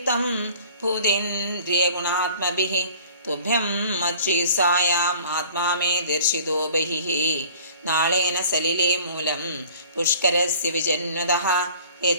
ഭൂതേന്ദ്രിയഗുണാത്മഭിഃ തുഭ്യം മത്ശ്രീസായാം ആത്മാ മേ ദർശിതോ ബഹിഃ. നാളേന സലിലേ മൂലം പുഷ്കരസ്യ വിജന്വതഃ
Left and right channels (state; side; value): inverted; both; correlation -0.49